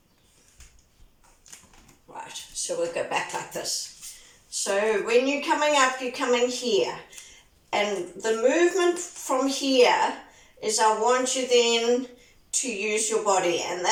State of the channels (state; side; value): identical; both; correlation 1.00